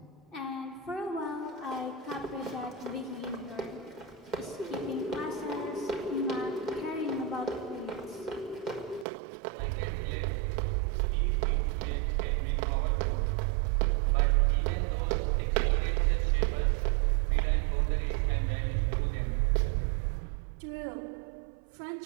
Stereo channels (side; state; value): left; drops out; at 9.1 s